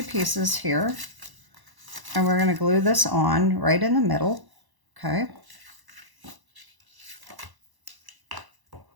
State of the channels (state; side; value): late; left; 1.0 ms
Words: pieces here, and we're going to glue this on right in the middle, okay?